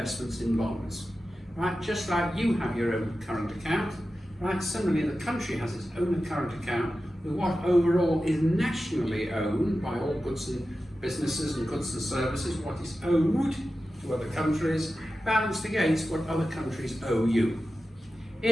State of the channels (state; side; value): normal; both; correlation 0.93